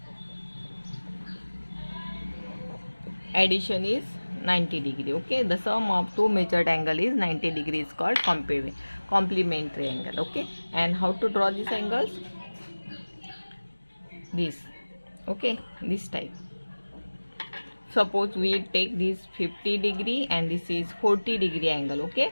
addition is 90 degree. Okay, the sum of two measured angle is 90 degree is called complementary angle. Okay, and how to draw these angles? This. Okay, this type. Suppose we take this 50 degree and this is 40 degree angle.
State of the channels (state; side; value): inverted; both; correlation -1.00